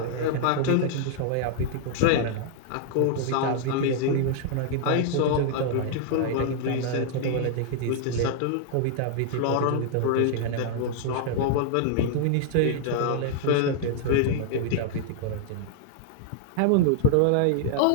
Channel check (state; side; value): different; both; correlation -0.01